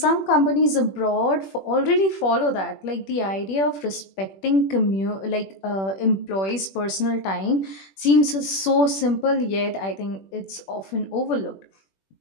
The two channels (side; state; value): right; late; 21 ms